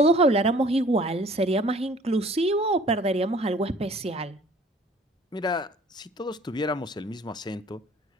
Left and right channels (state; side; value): normal; both; correlation 0.52